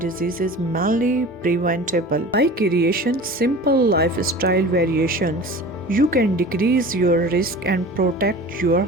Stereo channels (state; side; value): normal; both; correlation 0.38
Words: is mainly preventable. By creating simple lifestyle variations, you can decrease your risk and protect your